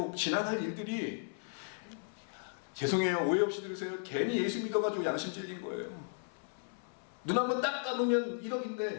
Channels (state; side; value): silent; right; 54 dB below the other